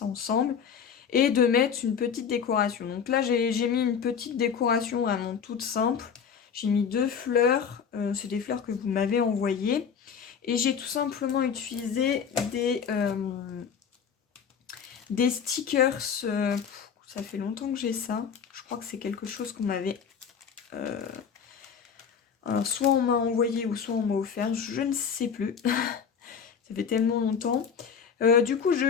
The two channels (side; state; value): right; quieter; 6.9 dB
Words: ensemble. Et de mettre une petite décoration. Donc là, j'ai mis une petite décoration vraiment toute simple. J'ai mis 2 fleurs. C'est des fleurs que vous m'avez envoyées. Et j'ai tout simplement utilisé des stickers. Ça fait longtemps que j'ai ça. Je crois que c'est quelque chose qu'on m'avait... alors, soit on m'a envoyé ou soit on m'a offert, je ne sais plus. Ça fait tellement longtemps. Du coup, je